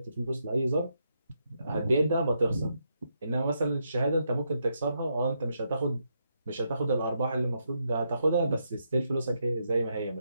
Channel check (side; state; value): both; inverted; correlation -0.80